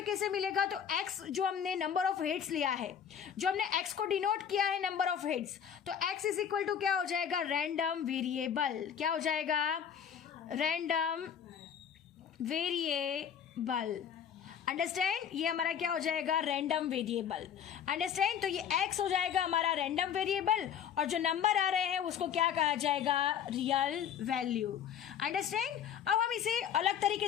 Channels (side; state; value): right; quieter; 8.4 dB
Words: कैसे मिलेगा, तो x जो हमने नंबर ऑफ हेड्स लिया है, जो हमने x को डिनोट किया है नंबर ऑफ हेड्स, तो x इज इक्वल टू क्या हो जाएगा, रैंडम वेरिएबल। क्या हो जाएगा, रैंडम वेरिएबल। अंडरस्टैंड, ये हमारा क्या हो जाएगा, रैंडम वेरिएबल। अंडरस्टैंड, तो ये x हो जाएगा हमारा रैंडम वेरिएबल और जो नंबर आ रहे हैं उसको क्या कहा जाएगा, रियल वैल्यू। अंडरस्टैंड। अब हम इसे अलग